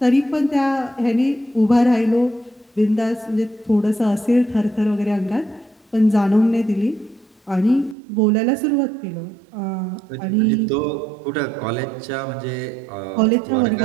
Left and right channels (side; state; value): left; drops out; at 8.0 s